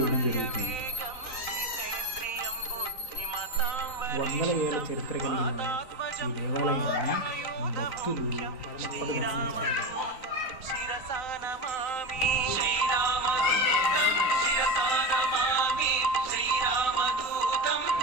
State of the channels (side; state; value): right; late; 3.9 ms